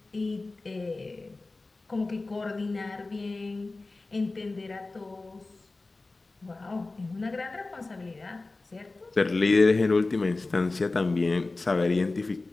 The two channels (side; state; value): right; quieter; 3.3 dB